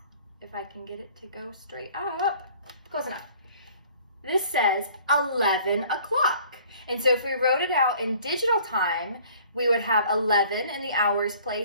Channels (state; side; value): inverted; both; correlation -0.53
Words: If I can get it to go straight up. Close enough. This says 11 o'clock. And so if we wrote it out in digital time, we would have 11 in the hours